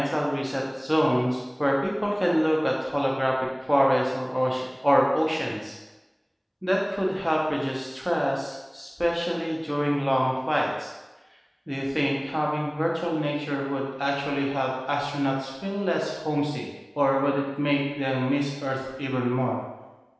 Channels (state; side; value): identical; both; correlation 1.00